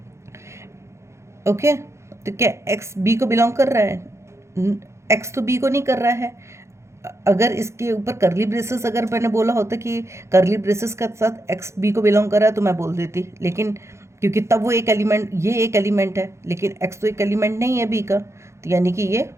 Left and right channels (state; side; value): late; left; 0.13 ms